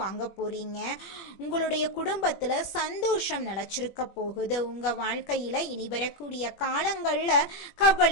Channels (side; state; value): right; late; 21 ms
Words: வாங்க போறீங்க. உங்களுடைய குடும்பத்துல சந்தோஷம் நிலைச்சிருக்க போகுது. உங்க வாழ்க்கையில இனி வரக்கூடிய காலங்கள்ல